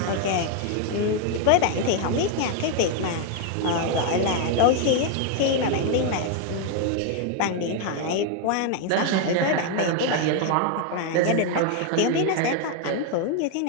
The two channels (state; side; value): different; both; correlation 0.01